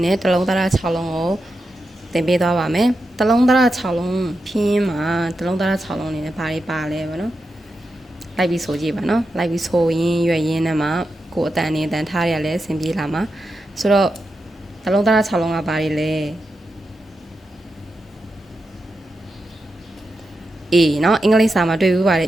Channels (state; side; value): normal; both; correlation 0.88